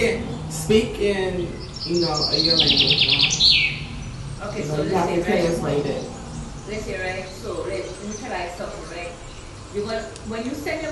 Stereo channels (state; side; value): identical; both; correlation 1.00